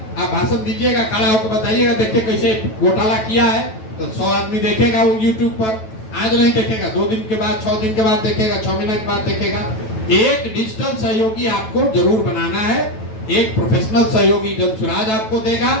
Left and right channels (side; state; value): right; late; 9.2 ms